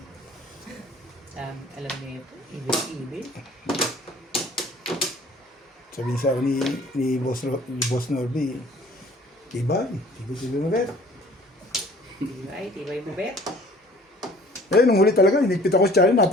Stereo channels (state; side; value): normal; both; correlation 0.51